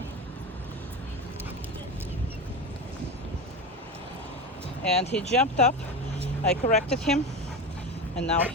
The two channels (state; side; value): normal; both; correlation 0.22